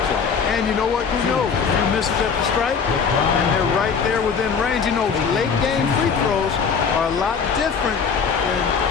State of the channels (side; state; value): right; quieter; 6.0 dB